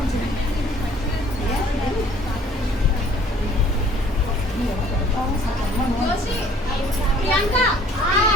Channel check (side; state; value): both; normal; correlation 0.56